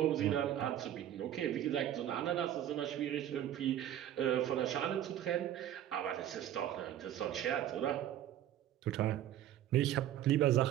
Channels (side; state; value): left; quieter; 11.6 dB